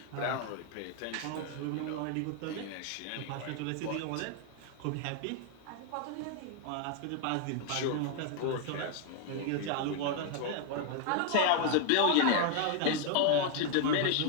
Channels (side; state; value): both; different; correlation 0.00